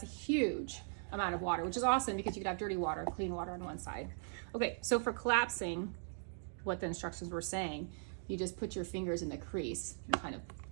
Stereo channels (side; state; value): left; silent; digital silence